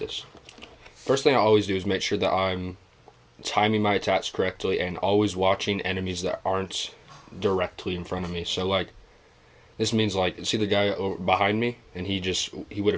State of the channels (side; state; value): both; identical; correlation 1.00